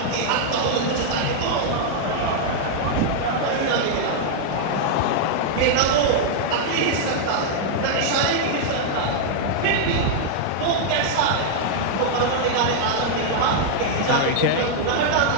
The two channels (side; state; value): both; different; correlation -0.01